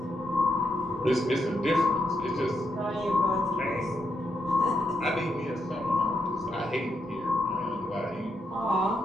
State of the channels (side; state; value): both; normal; correlation 0.80